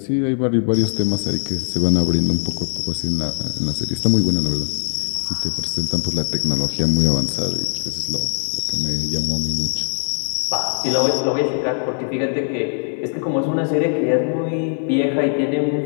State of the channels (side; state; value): right; silent; 65 dB below the other